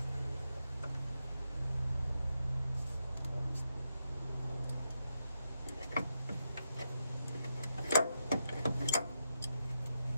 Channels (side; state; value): both; inverted; correlation -0.84